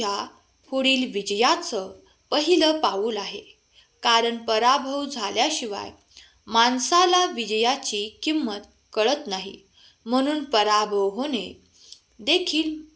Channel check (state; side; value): identical; both; correlation 1.00